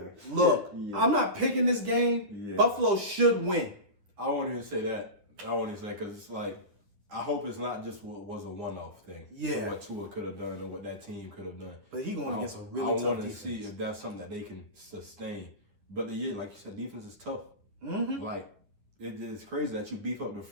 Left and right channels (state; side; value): late; left; 10 ms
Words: Look, I'm not picking this game. Yeah. Buffalo should win. I won't even say that. I won't even say because it's like, I hope it's not just what was a one-off thing. Yeah. What Tua could have done or what that team could have done. But he going against a really tough defense. I want to see if that's something that they can sustain. But like you said, defense is tough. Like, it is crazy that you beef up the